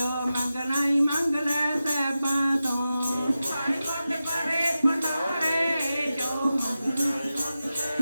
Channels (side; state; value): both; inverted; correlation -0.93